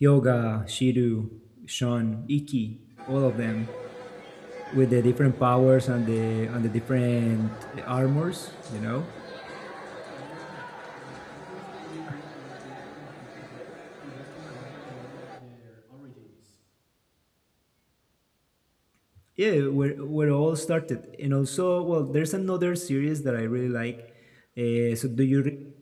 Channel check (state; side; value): identical; both; correlation 1.00